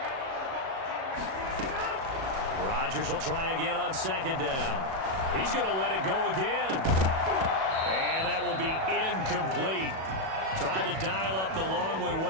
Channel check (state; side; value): late; left; 37 ms